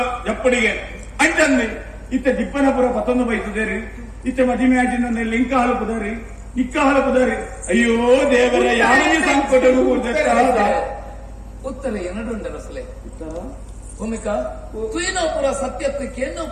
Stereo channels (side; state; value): both; identical; correlation 1.00